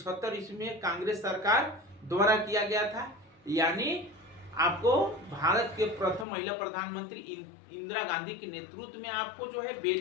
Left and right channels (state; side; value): drops out; right; at 6.2 s